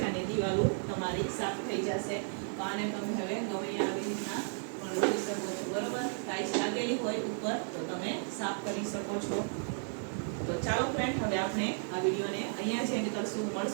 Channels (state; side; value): silent; left; 55 dB below the other